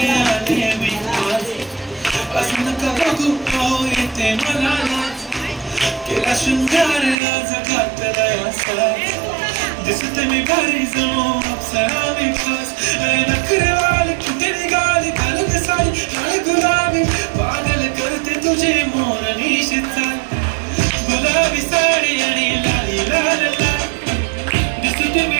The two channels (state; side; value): drops out; left; at 7.2 s